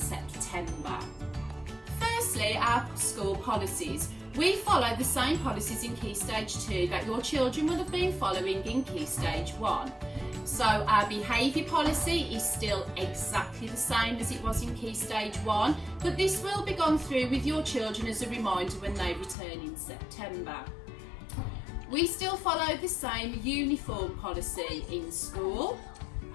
Firstly, our school policies. We follow the same policies in Key Stage 2 that your children will have been following in Key Stage 1. So our behaviour policy is still exactly the same as it was in Key Stage 1, but this will be gone through with your children as a reminder when they return in September. We still follow the same uniform policy in school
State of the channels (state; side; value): drops out; right; at 19.4 s